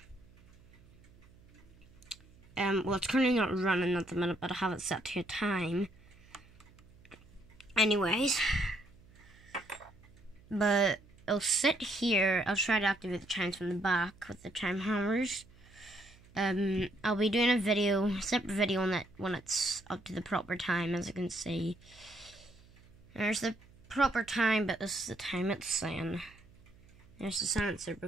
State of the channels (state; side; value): noise; right; hum, 26 dB below the sound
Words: Well, it's currently not running at the minute, but I have it set to a time. Anyways, but it'll sit here. I'll try to activate the chimes from the back with the chime hammers. I'll be doing a separate video on that when it's up to the proper time. As you can see, there's the proper time, but this is the time it's saying. There's the sensor